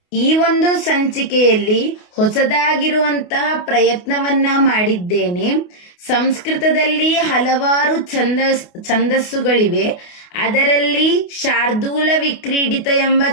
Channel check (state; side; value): late; right; 28 ms